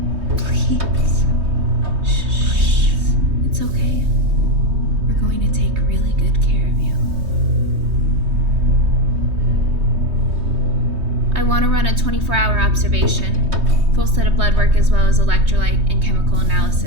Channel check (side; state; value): left; late; 3.2 ms